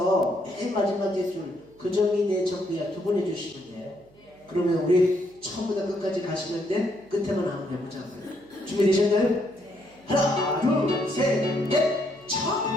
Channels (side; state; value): right; noise; hum, 29 dB below the sound